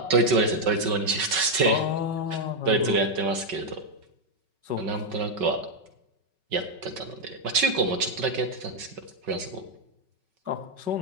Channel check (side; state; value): left; late; 5.3 ms